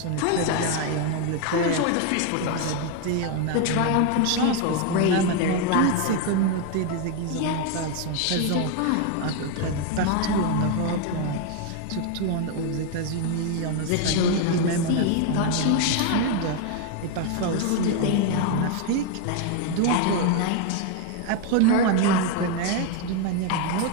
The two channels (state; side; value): different; both; correlation 0.01